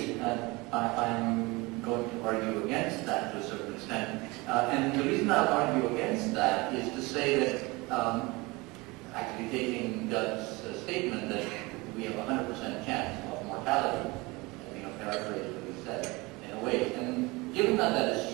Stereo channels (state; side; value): quieter; left; 24.0 dB